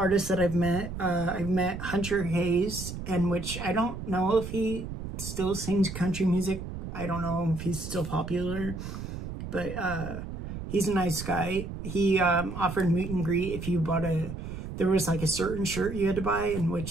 that I've met. I've met Hunter Hayes, and which I don't know if he still sings country music. I don't know if he's still popular, but he's a nice guy. He offered meet and greet if you bought there was like a certain shirt you had to buy, in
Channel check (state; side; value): noise; right; rumble, 8 dB below the sound